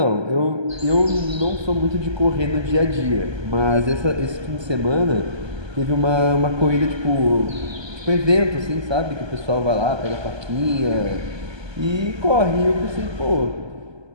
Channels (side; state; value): left; late; 1.2 ms